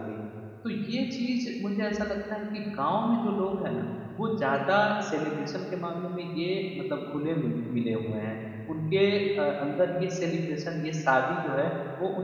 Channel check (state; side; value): identical; both; correlation 1.00